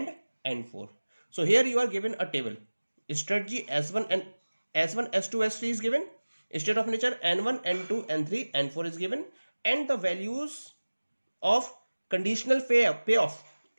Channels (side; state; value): both; inverted; correlation -1.00